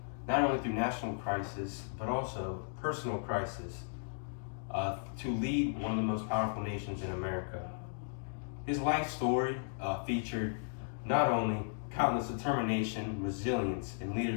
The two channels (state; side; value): silent; right; digital silence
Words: not only through national crisis, but also personal crisis, to lead one of the most powerful nations in America. His life story featured not only countless determination, resilience, and